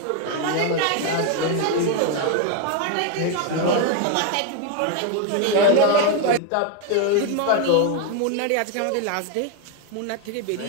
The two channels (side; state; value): both; different; correlation 0.01